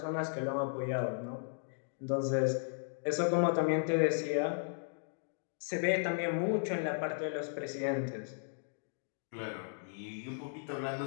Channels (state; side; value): silent; right; digital silence